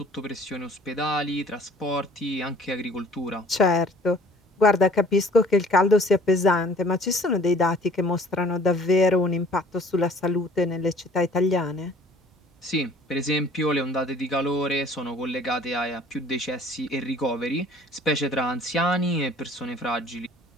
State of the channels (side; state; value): both; normal; correlation 0.52